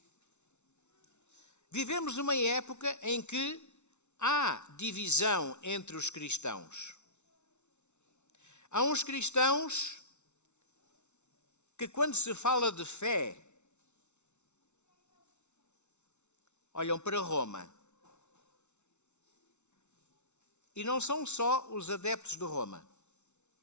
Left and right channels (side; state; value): right; late; 0.82 ms